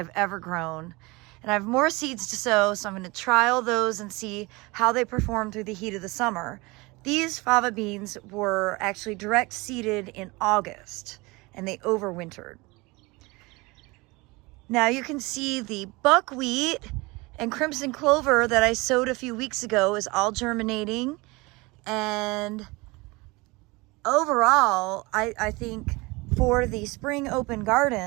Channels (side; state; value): left; quieter; 24.2 dB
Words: ever grown. And I have more seeds to sow, so I'm going to trial those and see how they perform through the heat of the summer. These fava beans were actually direct seeded in August, and they overwintered. Now you can see the buckwheat and crimson clover that I sowed a few weeks ago is all germinating. And overall, I think for the spring open